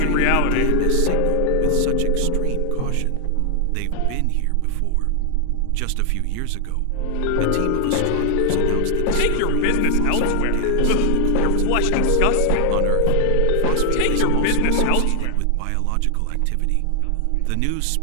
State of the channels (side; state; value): both; different; correlation 0.00